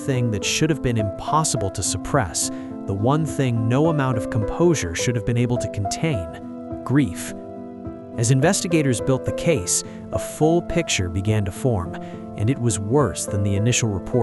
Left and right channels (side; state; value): both; identical; correlation 1.00